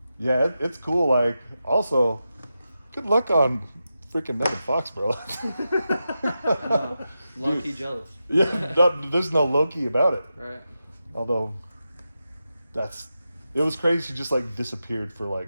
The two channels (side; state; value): both; inverted; correlation -0.90